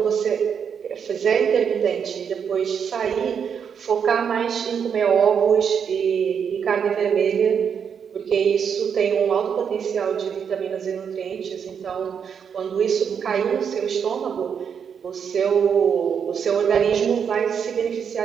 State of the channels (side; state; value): left; quieter; 7.3 dB